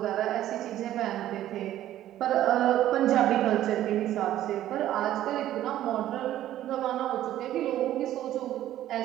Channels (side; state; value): left; quieter; 13.0 dB